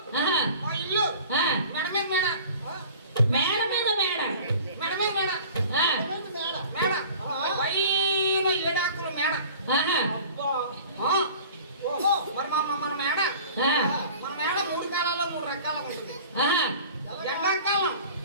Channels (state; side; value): inverted; both; correlation -0.44